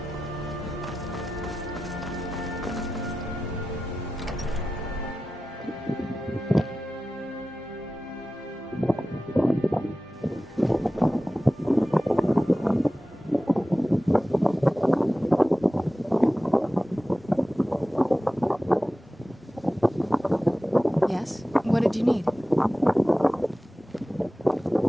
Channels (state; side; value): normal; both; correlation 0.95